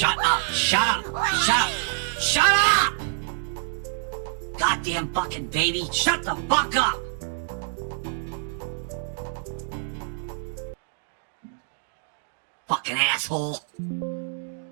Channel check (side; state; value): left; silent; digital silence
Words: up! Shut up! Shut up! Shut up! Goddamn fucking baby! Shut the fuck up! Fucking asshole!